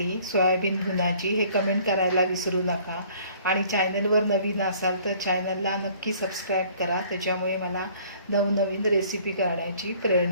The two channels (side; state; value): both; inverted; correlation -0.55